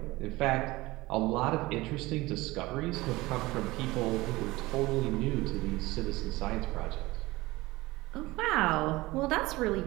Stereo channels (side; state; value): left; quieter; 20.2 dB